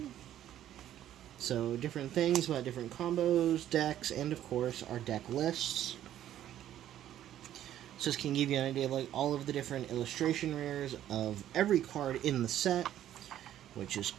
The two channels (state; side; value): quieter; left; 11.8 dB